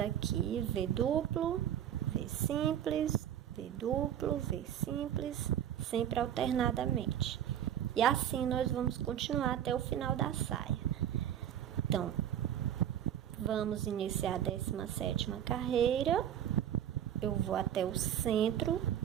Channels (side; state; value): left; quieter; 10.2 dB